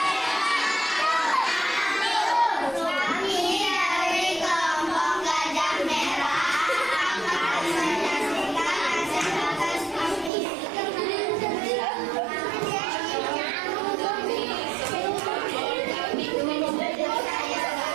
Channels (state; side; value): drops out; left; at 10.3 s